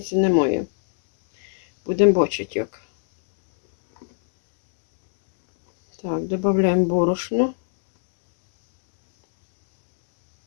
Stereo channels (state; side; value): silent; right; 65 dB below the other